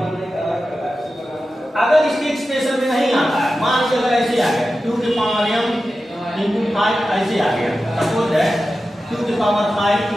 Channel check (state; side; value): normal; both; correlation 0.93